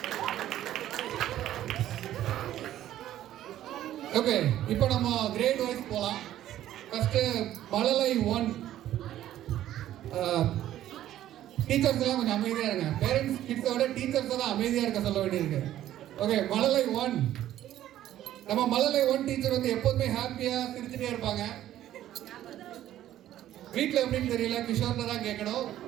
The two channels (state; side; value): quieter; left; 12.7 dB